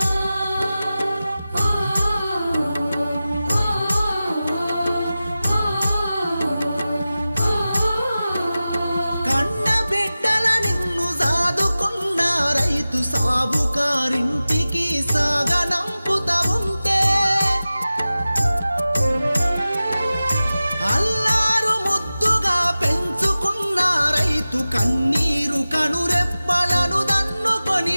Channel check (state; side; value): inverted; both; correlation -0.96